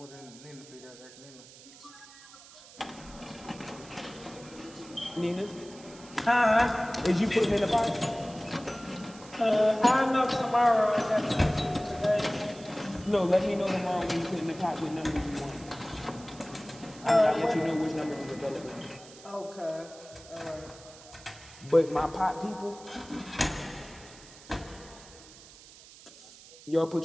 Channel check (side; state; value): right; noise; hiss, 20 dB below the sound